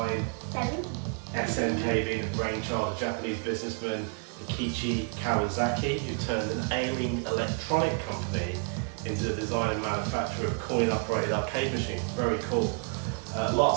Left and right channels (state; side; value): quieter; left; 39.5 dB